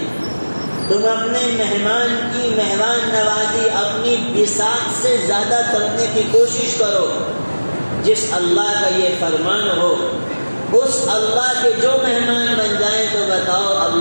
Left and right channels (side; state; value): both; inverted; correlation -1.00